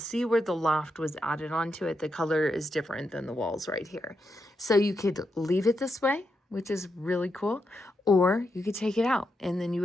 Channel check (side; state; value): both; normal; correlation 0.84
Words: where the loft was added onto it. The color is different than the walls right here. So you could leave it this way, which is really cool, or you could take it out and then you